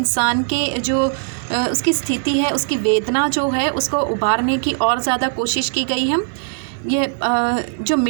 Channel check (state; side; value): silent; left; 63 dB below the other